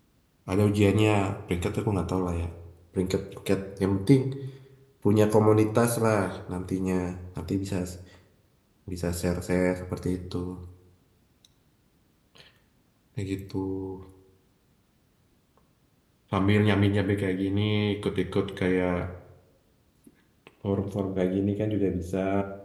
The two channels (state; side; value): identical; both; correlation 1.00